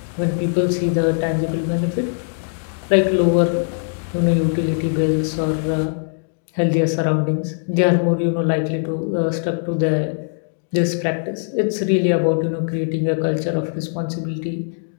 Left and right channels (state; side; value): silent; right; digital silence